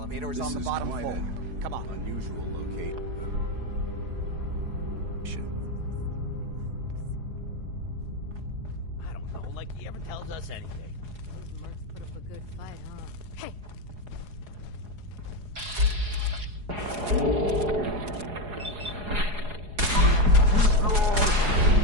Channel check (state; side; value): late; left; 4.8 ms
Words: is on the bottom floor. Come on. Unusual location. I don't know, like he ever tells us anything. Those mercs put up a good fight, huh? Hey!